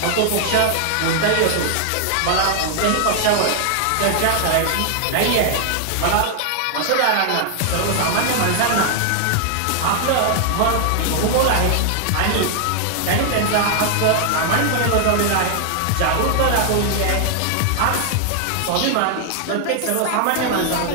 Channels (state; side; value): different; both; correlation 0.00